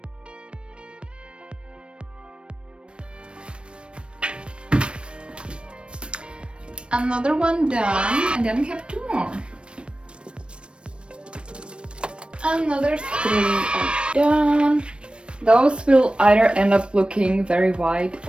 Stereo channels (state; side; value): late; left; 0.057 ms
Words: Another one done, and then we have 2 more. Another 3 are done. Those will either end up looking very white